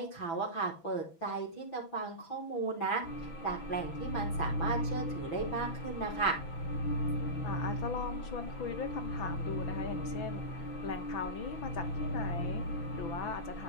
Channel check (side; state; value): right; late; 6.0 ms